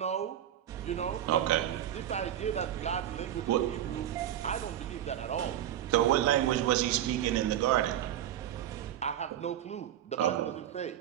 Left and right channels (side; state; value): left; quieter; 11.3 dB